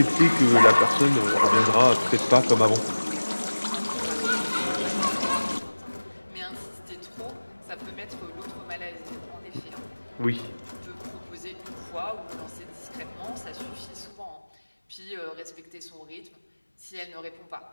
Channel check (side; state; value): both; inverted; correlation -1.00